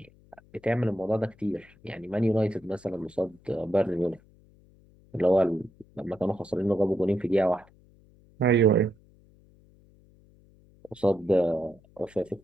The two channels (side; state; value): left; noise; hum, 28 dB below the sound